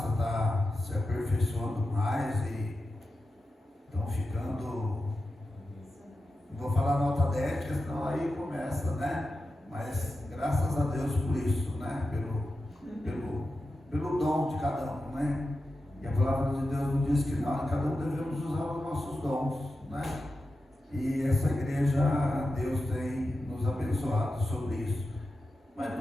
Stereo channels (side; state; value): both; normal; correlation 0.91